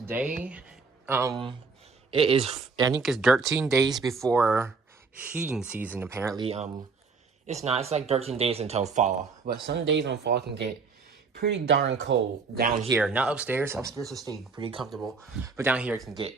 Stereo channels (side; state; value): left; quieter; 4.7 dB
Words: it is, I think it's 13 days before heating season. Apparently it's not, it's like 13 days until fall, but some days on fall can get pretty darn cold down here. Not upstairs will stay pretty comfortable, but down here it can get